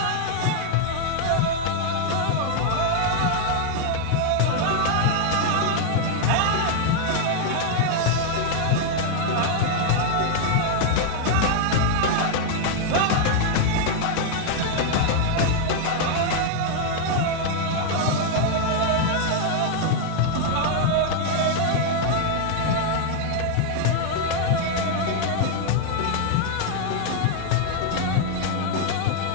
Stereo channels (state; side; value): different; both; correlation 0.00